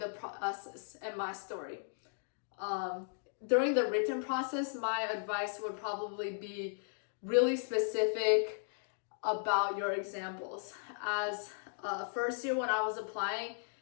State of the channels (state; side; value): silent; right; digital silence